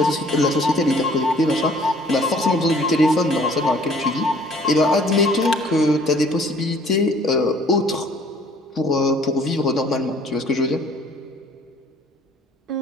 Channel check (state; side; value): normal; both; correlation 0.56